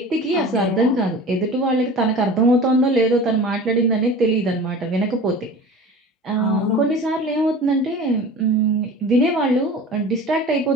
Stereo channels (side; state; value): both; normal; correlation 0.38